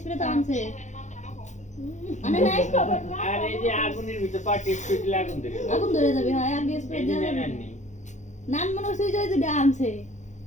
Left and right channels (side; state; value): right; late; 0.35 ms